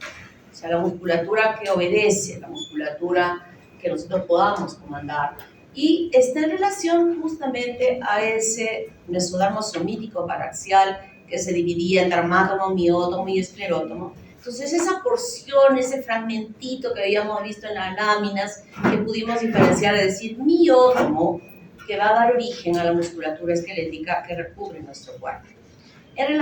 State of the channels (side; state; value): both; identical; correlation 1.00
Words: O sea, la musculatura que obedece, la musculatura que nosotros podamos comandar. Y está en relación justamente a ese mesodermo somítico paraxial que se dividía en dermátomo, miótomo y esclerótomo. Entonces esa porción, ese fragmentito que habíamos visto en las láminas, que pudimos diferenciar, es decir, miótomo, que va a dar origen a la musculatura esquelética que recubre nuestro cuerpo. En